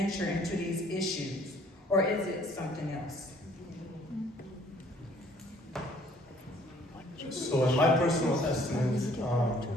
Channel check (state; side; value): normal; both; correlation 0.59